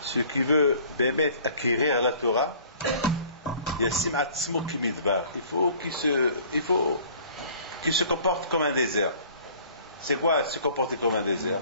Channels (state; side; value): inverted; both; correlation -0.52